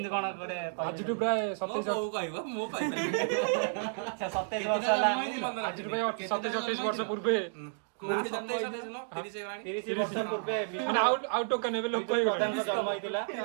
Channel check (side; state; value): left; silent; digital silence